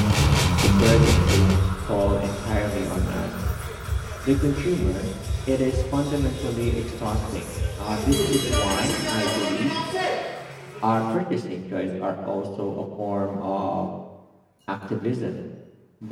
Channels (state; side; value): identical; both; correlation 1.00